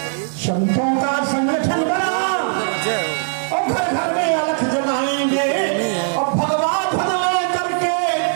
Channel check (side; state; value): left; silent; digital silence